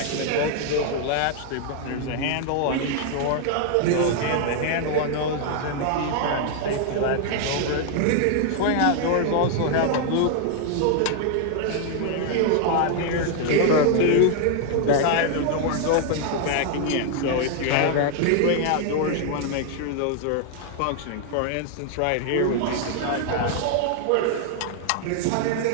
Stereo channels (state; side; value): different; both; correlation 0.00